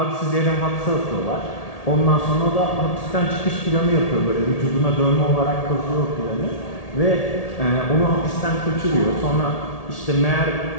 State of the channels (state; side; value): late; right; 1.8 ms